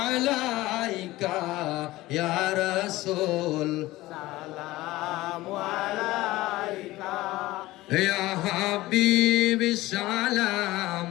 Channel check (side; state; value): right; quieter; 18.1 dB